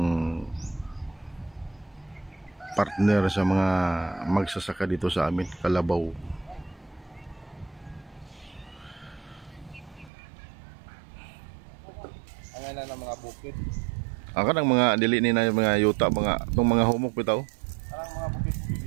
partner sa mga magsasaka dito sa amin, kalabaw. Na ng mga bukid. Kanang mga dili ni na mga yuta, itong mga humok bitaw. Kanang mga bukid.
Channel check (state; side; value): drops out; left; at 10.1 s